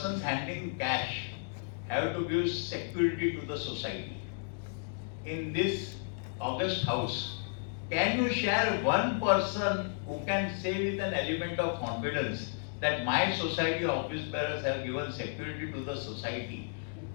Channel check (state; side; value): silent; right; digital silence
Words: handling cash have to give security to the society. In this august house, can you share one person who can say with an element of confidence that my society office bearers have given security to the society